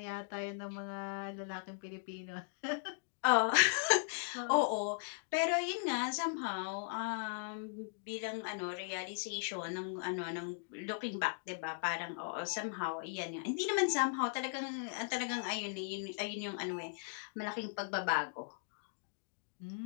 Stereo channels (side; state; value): right; silent; digital silence